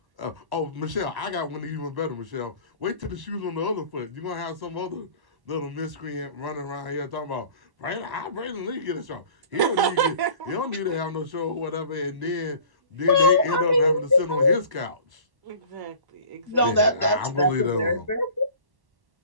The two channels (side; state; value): left; late; 1.1 ms